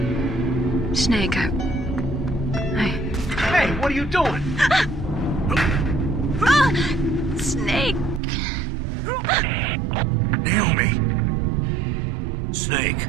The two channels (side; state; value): left; drops out; at 8.2 s